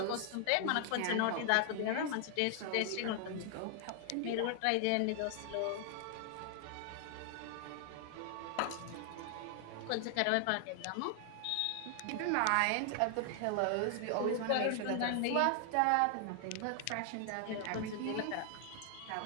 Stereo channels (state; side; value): different; both; correlation 0.00